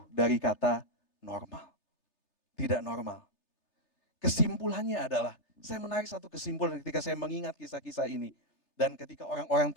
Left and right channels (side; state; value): right; late; 3.3 ms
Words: dari kata normal. Tidak normal. Kesimpulannya adalah, saya menarik satu kesimpulan ketika saya mengingat kisah-kisah ini. Dan ketika orang-orang